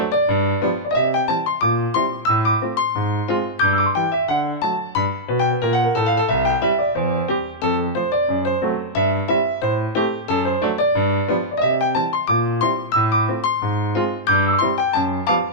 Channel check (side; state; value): right; late; 18 ms